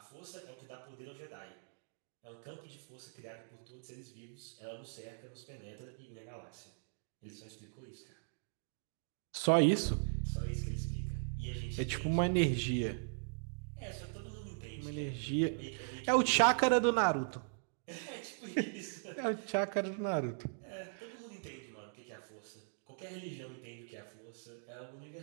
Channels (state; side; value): silent; left; digital silence